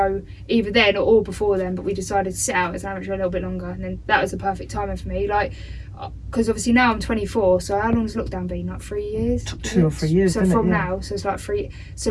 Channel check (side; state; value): both; identical; correlation 1.00